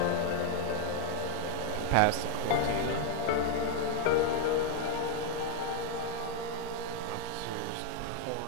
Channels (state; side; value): different; both; correlation 0.00